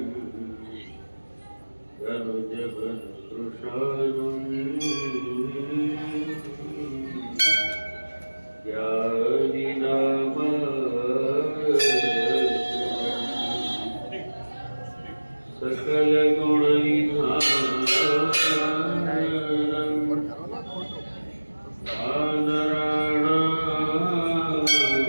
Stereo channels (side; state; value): both; inverted; correlation -1.00